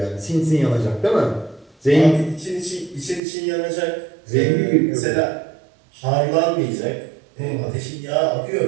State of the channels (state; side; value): drops out; left; at 3.2 s